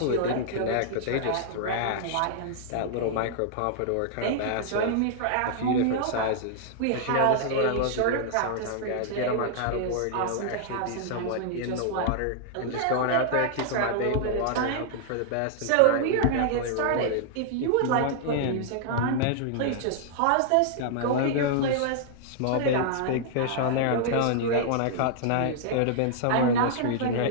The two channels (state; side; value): different; both; correlation -0.01